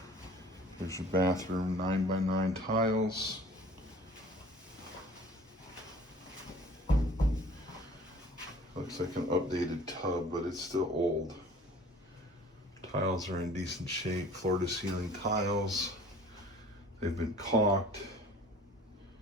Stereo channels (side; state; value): both; normal; correlation 0.49